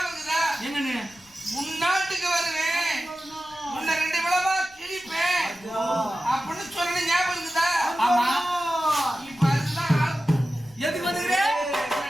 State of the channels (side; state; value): left; noise; rumble, 28 dB below the sound